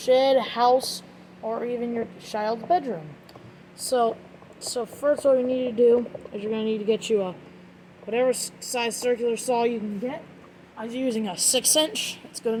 house, or even your child's bedroom. So first what you need to do is you're going to need to get you a whatever size circular saw you can get. I was using a 6-inch, it's good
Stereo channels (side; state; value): both; identical; correlation 1.00